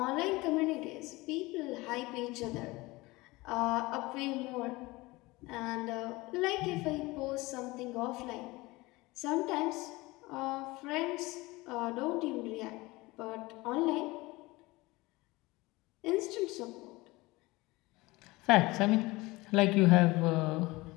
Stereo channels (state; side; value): quieter; right; 21.6 dB